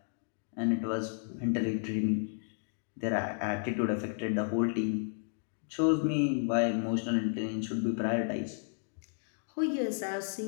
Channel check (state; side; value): silent; right; digital silence